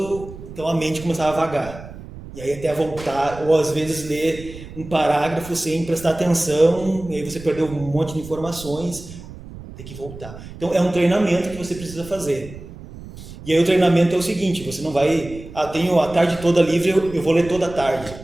então a mente começava a vagar. E aí até voltar, ou às vezes ler um parágrafo sem prestar atenção, e aí você perdeu um monte de informações, tem que voltar. Então é um treinamento que você precisa fazer. E aí o treinamento é o seguinte, você não vai, tenho a tarde toda livre, eu vou ler toda a tarde.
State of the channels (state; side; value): noise; right; rumble, 15 dB below the sound